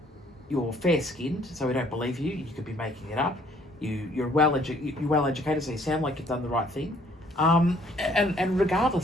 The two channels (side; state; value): both; normal; correlation 0.61